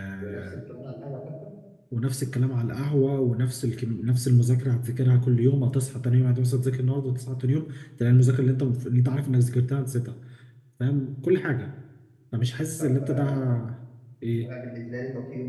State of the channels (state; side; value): identical; both; correlation 1.00